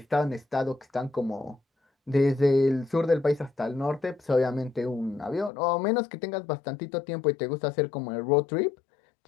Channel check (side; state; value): right; drops out; at 5.5 s